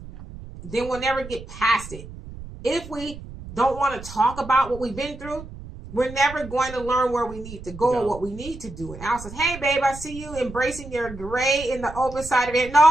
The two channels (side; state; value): right; noise; rumble, 14 dB below the sound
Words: then we'll never get past it. If we don't want to talk about what we've been through, we're never going to learn where we need to go or what we need to do. And Al says, hey, babe, I see you embracing your gray in the open side of it.